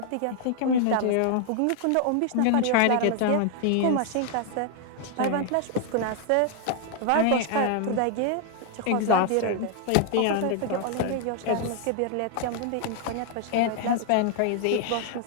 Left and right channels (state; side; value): different; both; correlation 0.00